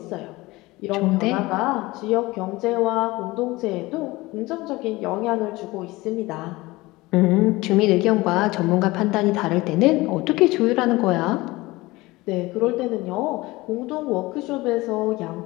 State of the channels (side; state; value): right; quieter; 20.7 dB